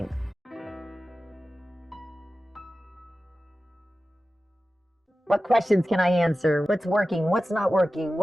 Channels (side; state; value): both; normal; correlation 0.94